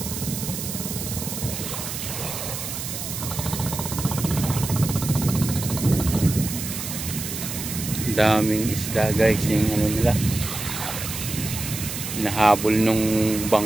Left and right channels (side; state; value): right; noise; hiss, 6 dB below the sound